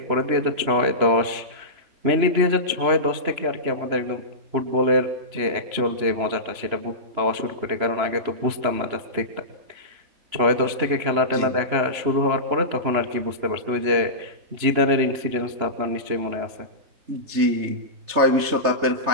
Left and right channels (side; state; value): left; late; 3.0 ms